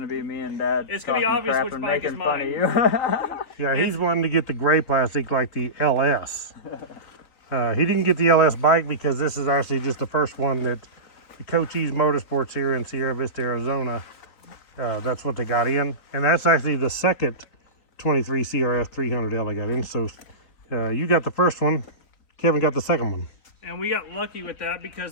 to be me and Dad It's gonna be talking obvious crap which and bike is making fun of mine. you. Yeah, he's wanting to get the gray plastic like the LS. He didn't get the LS bike because this is actually just the first one that Cochise Motorsports here in Sierra Vista, Arizona. That's what they got in. And that's actually the second 23 CRF300L I got in. So you got the first one. Kevin got the second one. And we got lucky with that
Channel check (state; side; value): late; right; 3.9 ms